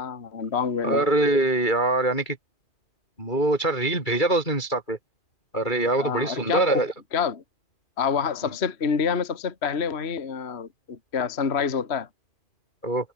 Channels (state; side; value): late; right; 2.3 ms